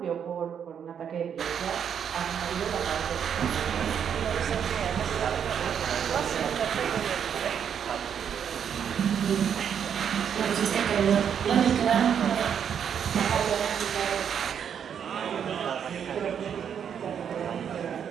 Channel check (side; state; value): left; quieter; 8.1 dB